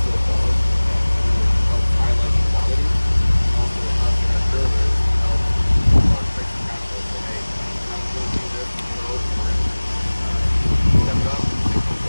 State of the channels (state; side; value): inverted; both; correlation -1.00